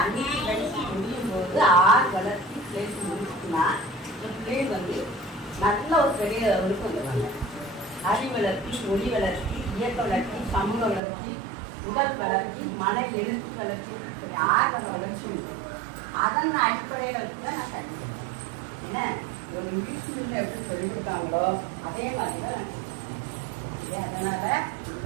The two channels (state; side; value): drops out; left; at 11.0 s